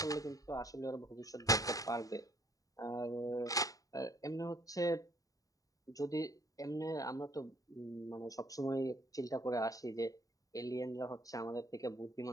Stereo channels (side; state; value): right; late; 0.17 ms